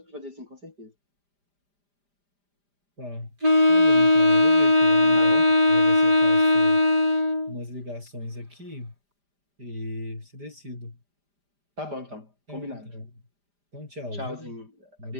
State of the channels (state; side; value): late; left; 5.0 ms